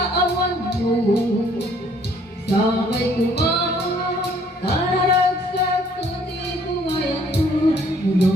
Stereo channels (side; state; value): both; normal; correlation 0.61